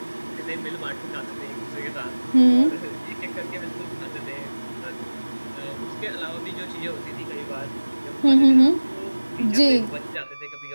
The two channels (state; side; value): inverted; both; correlation -1.00